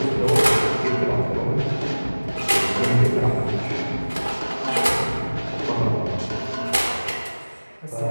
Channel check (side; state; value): both; inverted; correlation -1.00